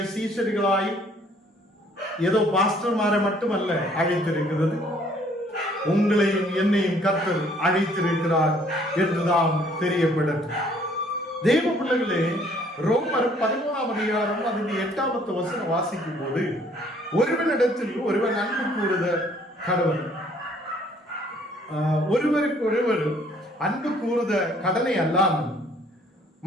சீஷர்களாய் ஏதோ பாஸ்டர்மாரை மட்டுமல்ல அழைத்திருக்கிறது, உங்களையும் என்னையும் கர்த்தர் அழைத்திருக்கிறார் என்றுதான் தெரியப்படும். தேவ பிள்ளைகளே, ரோமர் 11ஆம் அதிகாரம் அதில் 8வது வசனம் வாசிக்கும் போது, ஒருவனிடத்தில் ஒருவன் அன்பு கூறுத கடவுள், ஒருவருக்கு ஒருவர் அன்பு கூறுத கடனை அல்லாமல்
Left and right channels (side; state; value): both; normal; correlation 0.61